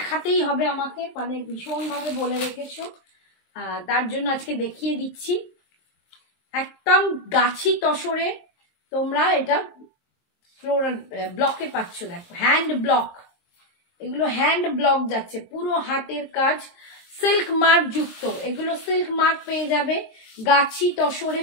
হবে আমাকে, মানে ভীষণ ভাবে বলে রেখেছো, তার জন্য আজকে দেখিয়ে দিচ্ছি। একদম গাছি তসরে তোমরা এটা ফ্লোরাল ব্লকে পাচ্ছ। দেখো হ্যান্ড ব্লক, এগুলো হ্যান্ড ব্লক যাচ্ছে, পুরো হাতের কাজ, সিল্ক মার্ক যুক্ত। এগুলো সিল্ক মার্ক পেয়ে যাবে, গাছি তসরে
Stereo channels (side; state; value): right; late; 23 ms